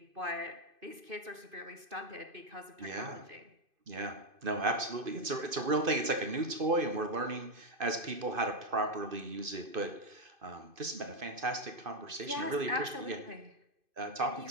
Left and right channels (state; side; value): late; left; 2.5 ms